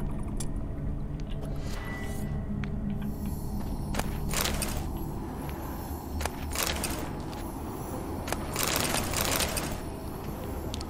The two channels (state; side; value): identical; both; correlation 1.00